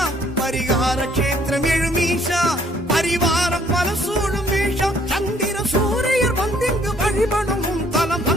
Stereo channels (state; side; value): normal; both; correlation 0.63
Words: பரிகார கஷேத்திரம் எழும் ஈஷா, பரிவாரம் பல சூழும் ஈஷா. சந்திர சூரியர் வந்திங்கு வழிபடும் உன் தலம்,